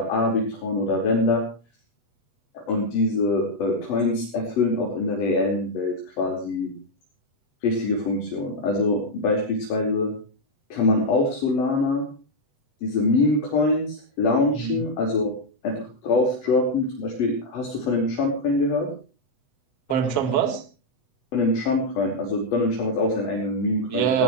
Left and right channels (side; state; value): right; late; 8.0 ms